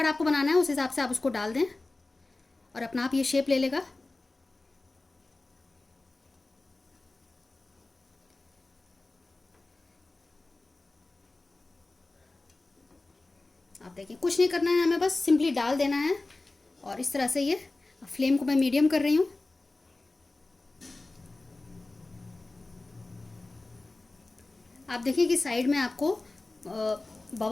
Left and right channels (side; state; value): right; quieter; 3.2 dB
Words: आपको बनाना है उस हिसाब से आप उसको डाल दें और अपना आप ये शेप ले लेगा। आप देखिए कुछ नहीं करना है, हमें बस सिंपली डाल देना है। और इस तरह से ये, फ्लेम को मैं मीडियम कर रही हूँ। आप देखिए कि साइड में आपको